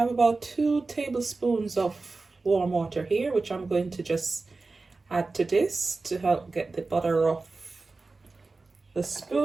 about 2 tablespoons of warm water here, which I'm going to just add to this to help get the butter off the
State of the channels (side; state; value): left; quieter; 3.7 dB